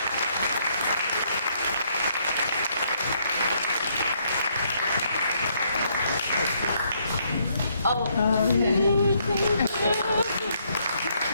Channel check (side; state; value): both; inverted; correlation -0.71